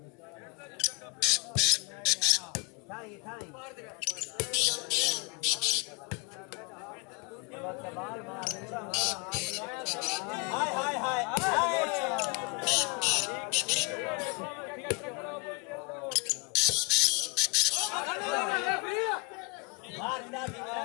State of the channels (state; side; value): quieter; right; 26.8 dB